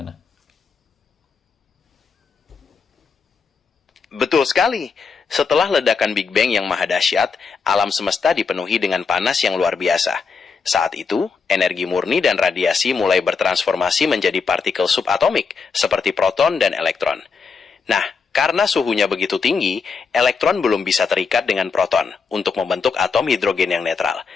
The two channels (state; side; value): quieter; right; 5.2 dB